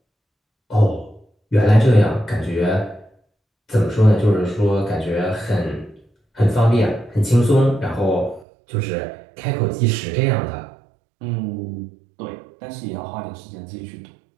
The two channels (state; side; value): drops out; left; at 8.5 s